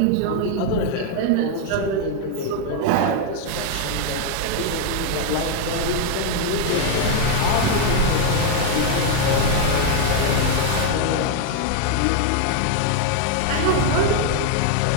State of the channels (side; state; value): both; different; correlation 0.00